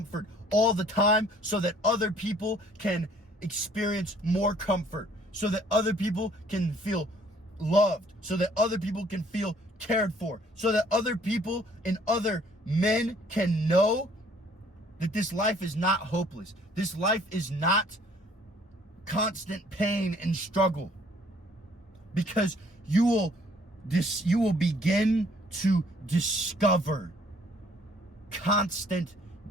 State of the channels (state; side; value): normal; both; correlation 0.59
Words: all the time, so that other people can experience more comfort, so that other people can feel loved, so that other people can feel cared for, so that other people and other men can know that this life is not hopeless. This life is not constant pain and struggle, because you will begin to discover constant